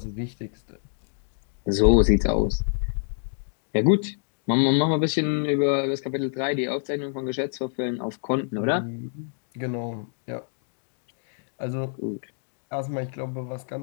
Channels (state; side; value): silent; right; digital silence